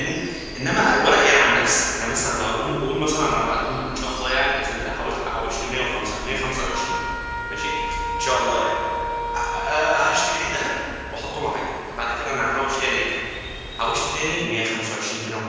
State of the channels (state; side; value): identical; both; correlation 1.00